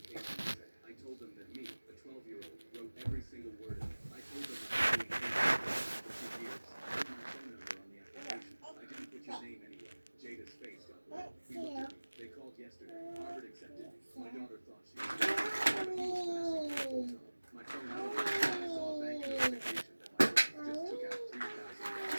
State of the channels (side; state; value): both; inverted; correlation -1.00